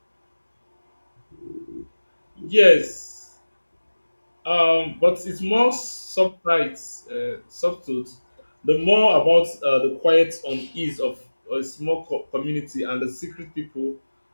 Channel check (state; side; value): inverted; both; correlation -1.00